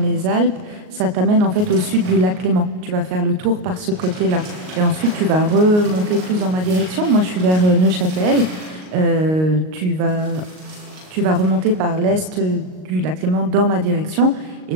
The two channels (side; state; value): left; late; 38 ms